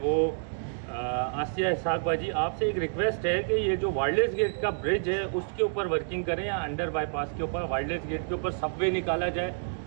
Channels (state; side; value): silent; left; digital silence